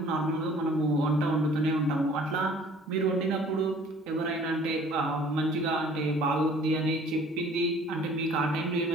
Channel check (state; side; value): normal; both; correlation 0.52